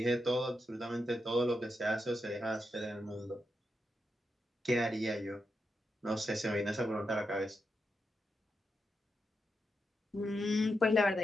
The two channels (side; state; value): both; normal; correlation 0.86